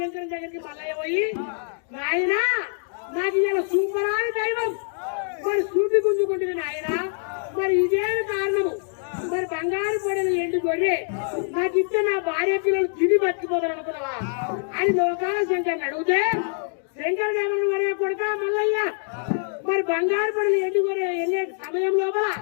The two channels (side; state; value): right; silent; digital silence